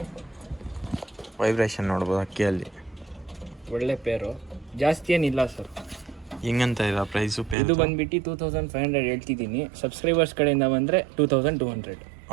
ವೈಬ್ರೇಷನ್ ನೋಡ್ಬೋದು ಅಕ್ಕಿಯಲ್ಲಿ. ಒಳ್ಳೆ ಪೇರು, ಜಾಸ್ತಿ ಏನಿಲ್ಲ ಸರ್. ಹಿಂಗಂತ ಇಲ್ಲ ಪ್ರೈಸು ಪೇರ್? ಇದು ಬಂದ್ಬಿಟ್ಟು 2500 ಹೇಳ್ತಿದ್ದೀನಿ. ಸಬ್ಸ್ಕ್ರೈಬರ್ಸ್ ಕಡೆಯಿಂದ ಬಂದರೆ 2200.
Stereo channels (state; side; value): drops out; left; at 7.6 s